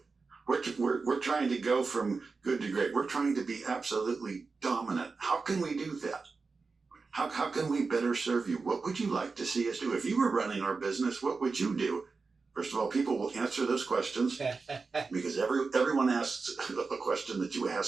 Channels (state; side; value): quieter; left; 4.4 dB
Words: We're trying to go from good to great. We're trying to be absolutely dominant. How can we do that? How can we better serve you? What would you like to see us do? If you were running our business, what would you do? First of all, people will answer those questions because everyone asks a question that you